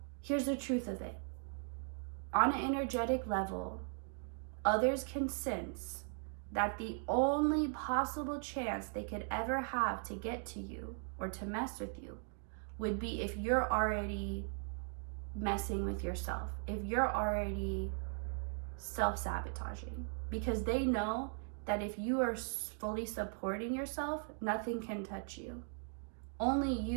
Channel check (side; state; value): left; silent; 52 dB below the other